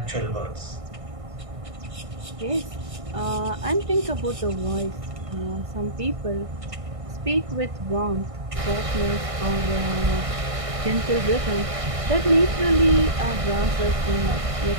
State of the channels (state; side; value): late; left; 1.6 ms